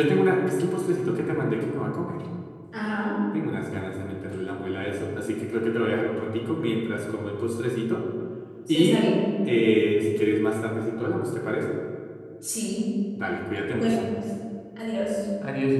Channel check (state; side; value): identical; both; correlation 1.00